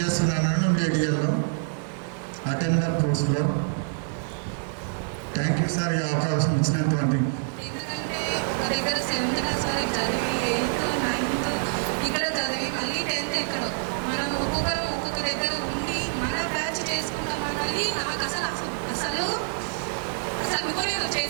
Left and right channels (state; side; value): silent; left; digital silence